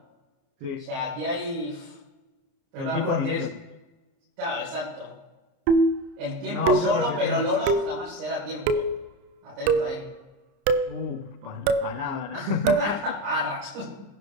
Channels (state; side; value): late; left; 30 ms